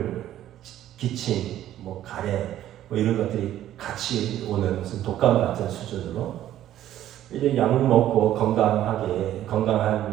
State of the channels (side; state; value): left; quieter; 12.5 dB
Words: 기침, 뭐 가래, 뭐 이런 것들이 같이 오는 무슨 독감 같은 수준으로 이제 약 먹고